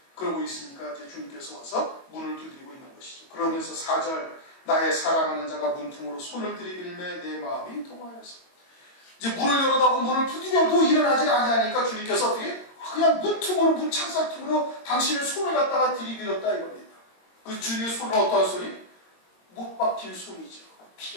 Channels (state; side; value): late; right; 22 ms